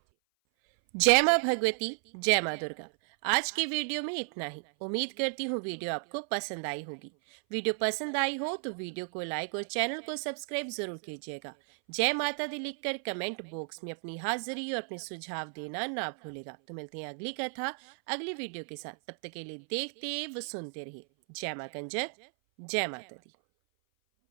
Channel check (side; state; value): left; silent; 56 dB below the other